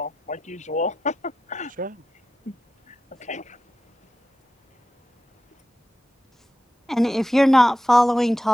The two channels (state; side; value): normal; both; correlation 0.90